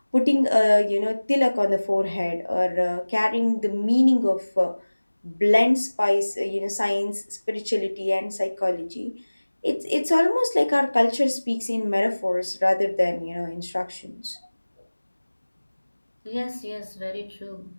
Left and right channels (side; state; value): both; inverted; correlation -1.00